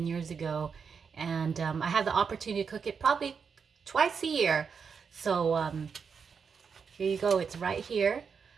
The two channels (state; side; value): quieter; left; 6.0 dB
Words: years ago, and I had the opportunity to cook it probably twice a year. So here you go. It's right here.